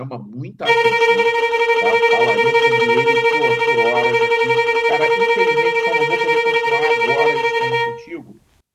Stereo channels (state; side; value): identical; both; correlation 1.00